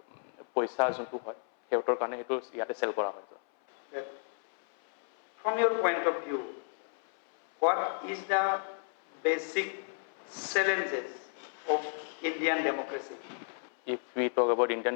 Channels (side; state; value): right; silent; 56 dB below the other